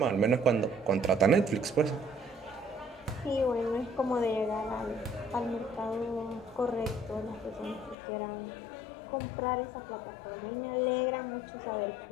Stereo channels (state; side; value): drops out; right; at 8.0 s